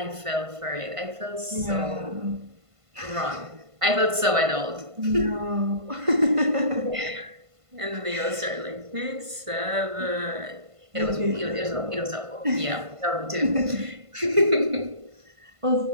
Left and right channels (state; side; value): late; left; 1.5 ms